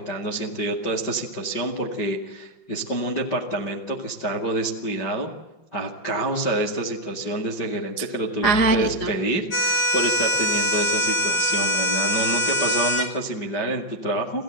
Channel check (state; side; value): late; right; 5.2 ms